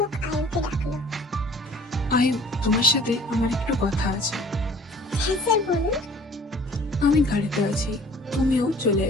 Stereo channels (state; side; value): normal; both; correlation 0.51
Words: আয়ুকে ডাকলো। আয়ু, তোমার সাথে আমার একটু কথা আছে। হ্যাঁ স্যার বলুন। আমি গাড়িতে আছি, তুমিও চলে